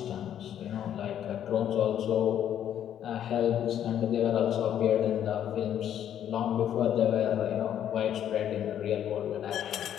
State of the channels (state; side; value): quieter; right; 10.2 dB